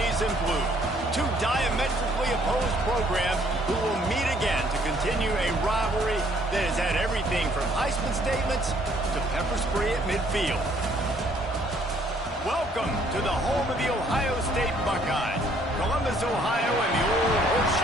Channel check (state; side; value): normal; both; correlation 0.63